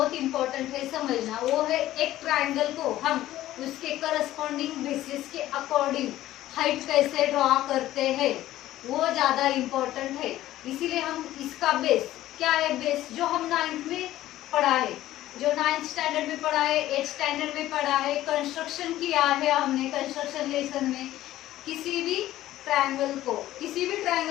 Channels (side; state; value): right; quieter; 14.5 dB